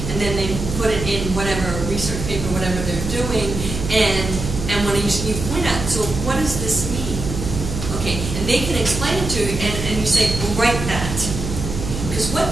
And then they put it in whatever research paper, whatever they're doing, and when you point out, so what does this mean? Okay, and they can explain it to you, and you say, well, write that. Because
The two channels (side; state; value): right; noise; hum, 5 dB below the sound